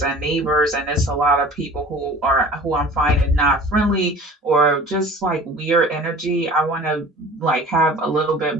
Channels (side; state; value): both; normal; correlation 0.43